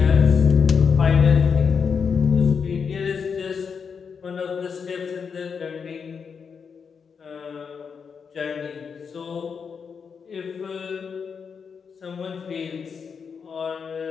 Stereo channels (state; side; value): quieter; right; 6.2 dB